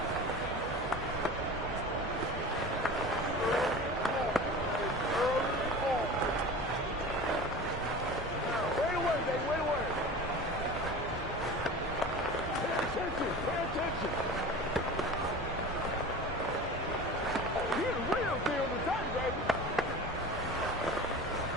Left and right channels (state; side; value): normal; both; correlation 0.35